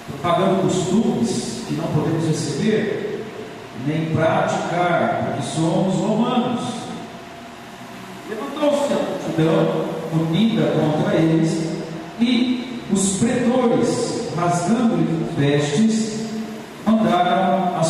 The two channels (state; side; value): identical; both; correlation 1.00